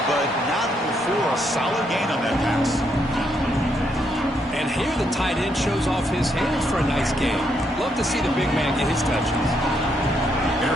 but not before a solid gain on that pass. And here the tight end shows off his hands for a nice game. Love to see the big man get his touches. Here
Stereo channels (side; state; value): both; normal; correlation 0.76